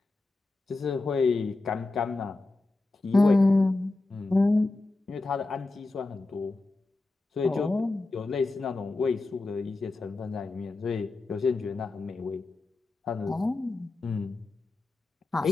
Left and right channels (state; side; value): quieter; right; 3.2 dB